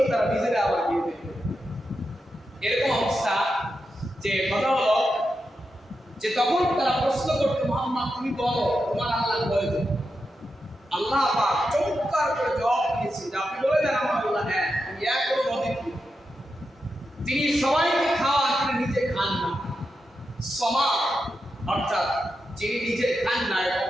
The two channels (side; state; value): both; normal; correlation 0.88